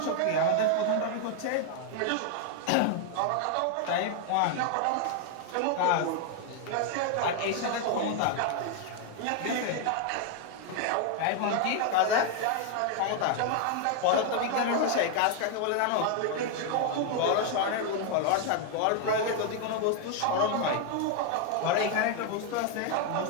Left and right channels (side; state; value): both; different; correlation 0.00